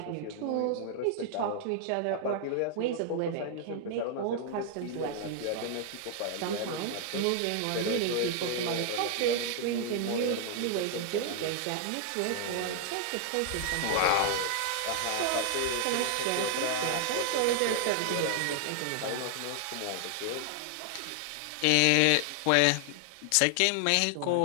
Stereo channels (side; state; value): both; different; correlation 0.00